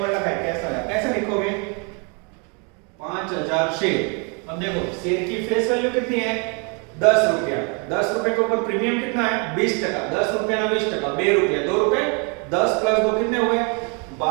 लगा है, कैसा है? कैसे लिखोगे? 5,000 शेयर। अब देखो शेयर की फेस वैल्यू कितनी है? 10 रुपया। 10 रुपए के ऊपर प्रीमियम कितना है? 20%। 10 रुपया ना 20%, 2 रुपया। 2 रुपए 10 प्लस 2 कितने हुए?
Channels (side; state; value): left; quieter; 34.5 dB